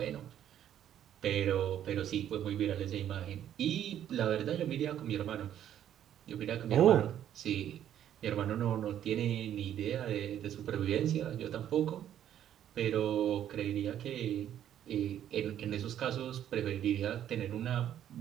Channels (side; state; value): left; quieter; 10.7 dB